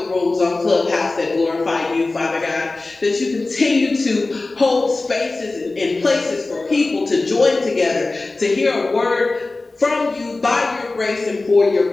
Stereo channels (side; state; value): right; quieter; 3.3 dB